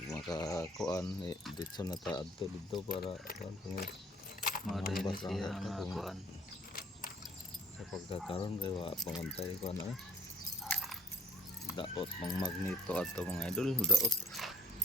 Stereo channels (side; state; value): both; normal; correlation 0.58